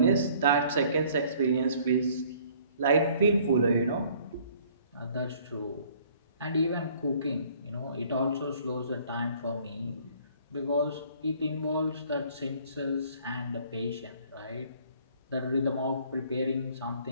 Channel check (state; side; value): inverted; both; correlation -0.57